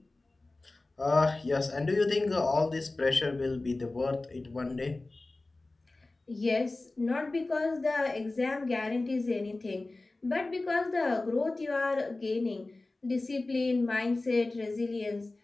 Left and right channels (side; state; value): right; quieter; 3.1 dB